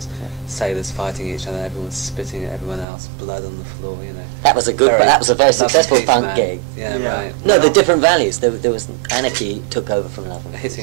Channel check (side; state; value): left; drops out; at 2.9 s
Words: sailors fighting each other. Everyone was spitting at everyone else, blood on the floor. You know. That was a very successful punk gig. Yeah, right. No, the different values. There was anarchy took over from Love and Peace.